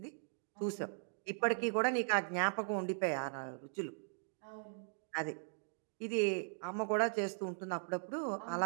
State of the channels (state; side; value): silent; left; digital silence